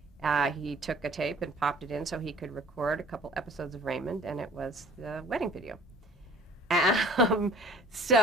He took a tape and popped it in so he could record a couple episodes of Raymond, and it was the wedding video.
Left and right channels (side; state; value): both; normal; correlation 0.50